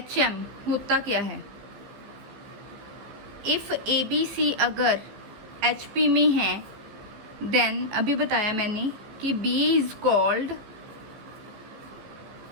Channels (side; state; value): left; late; 15 ms